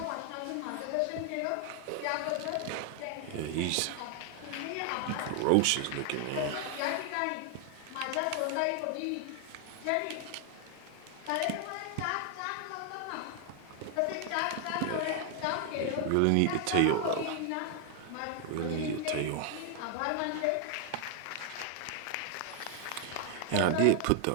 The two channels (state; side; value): different; both; correlation 0.00